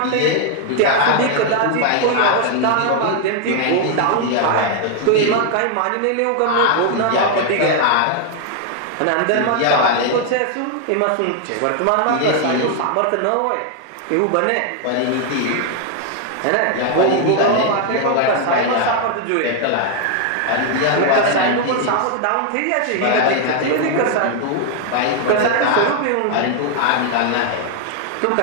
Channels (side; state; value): both; different; correlation 0.00